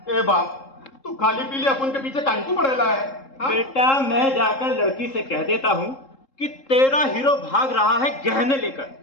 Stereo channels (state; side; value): late; right; 3.7 ms